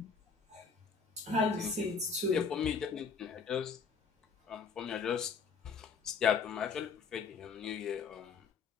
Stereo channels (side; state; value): right; quieter; 5.4 dB